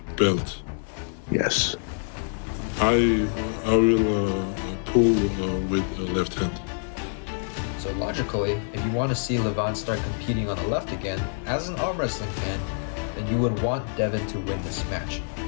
belt, Yes. I will pull with left hand. So logically, if you want to see Levon start competing on the left again, as an arm wrestling fan, then you would want Devon to win this match.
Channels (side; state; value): right; silent; digital silence